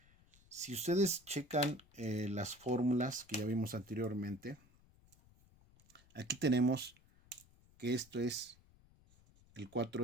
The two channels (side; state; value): left; noise; rumble, 28 dB below the sound